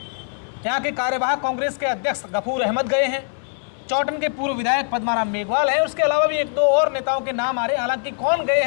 यहाँ के कार्यवाहक कांग्रेस के अध्यक्ष गफूर अहमद गए हैं। चौटन के पूर्व विधायक पद्माराम मेघवाल हैं। उसके अलावा भी 1-2 और नेताओं के नाम आ रहे हैं। हालांकि कौन गए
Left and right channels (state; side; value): silent; right; 63 dB below the other